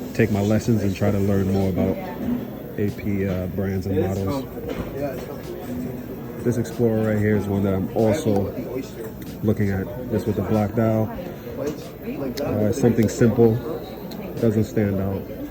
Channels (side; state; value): both; identical; correlation 1.00